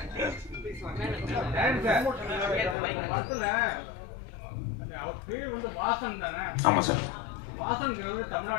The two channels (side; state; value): right; drops out; at 2.8 s